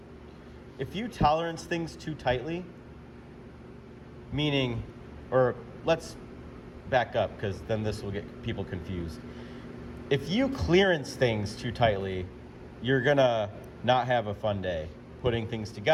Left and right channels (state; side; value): identical; both; correlation 1.00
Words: if you tolerance things too tightly, meaning, or let's back up, because then this will get people confused. If you clearance things too tightly, you're gonna not have a fun day putting things